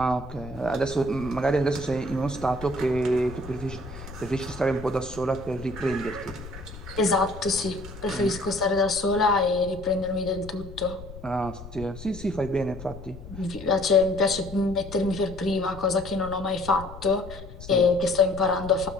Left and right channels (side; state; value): left; noise; rumble, 14 dB below the sound